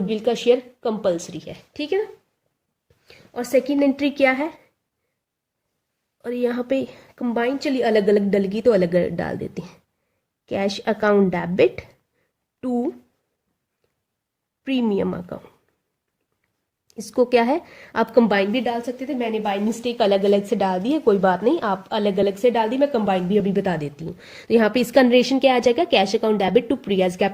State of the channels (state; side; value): identical; both; correlation 1.00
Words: का शेयर कंपलसरी है। ठीक है ना, और सेकंड एंट्री क्या है, और यहाँ पे कंबाइन, चलिए अलग अलग डलगी तो अलग अलग डाल देते हैं। Cash account debit to premium account, इसको क्या है आप कंबाइन भी डाल सकते थे, मैंने बाय मिस्टेक अलग अलग से डाल दी है, कोई बात नहीं, आप अलग अलग से डाल दी, मैं कंबाइन भी अभी बता देती हूँ। तो यहाँ पे इसका नरेशन क्या आ जाएगा, cash account debit to Priya's